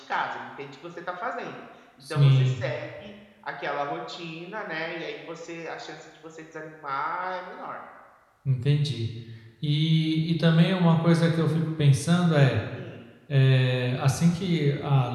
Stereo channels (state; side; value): identical; both; correlation 1.00